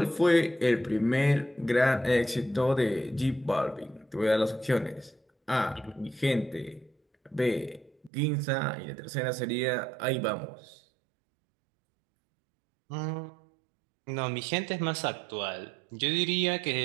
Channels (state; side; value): drops out; left; at 8.1 s